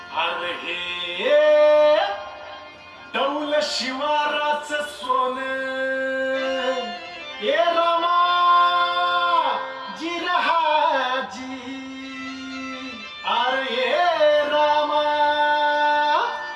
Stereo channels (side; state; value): both; identical; correlation 1.00